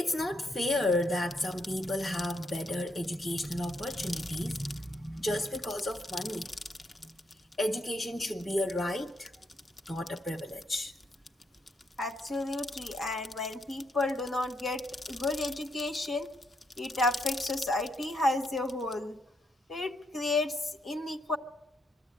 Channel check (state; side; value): normal; both; correlation 0.77